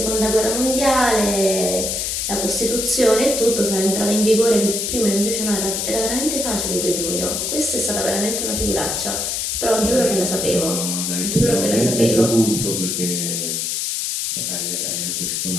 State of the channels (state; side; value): noise; left; hiss, 1 dB below the sound